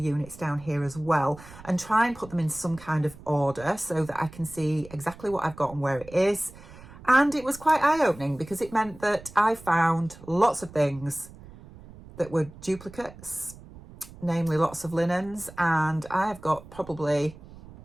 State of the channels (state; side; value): noise; right; rumble, 19 dB below the sound